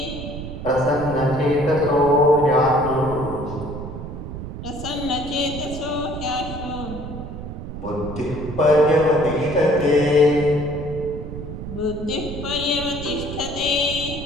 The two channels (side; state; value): right; noise; rumble, 9 dB below the sound